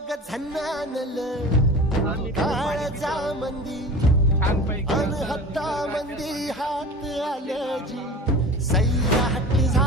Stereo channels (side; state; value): both; normal; correlation 0.36